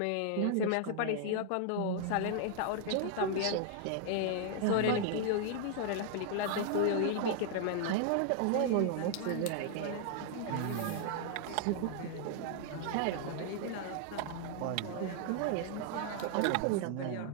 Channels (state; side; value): different; both; correlation 0.00